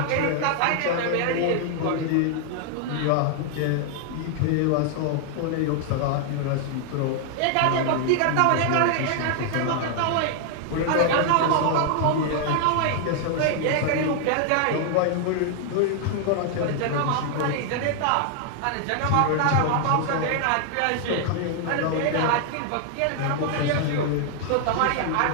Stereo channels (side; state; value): both; different; correlation 0.00